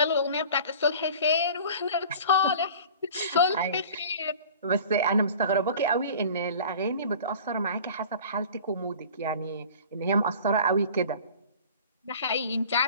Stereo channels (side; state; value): both; inverted; correlation -0.43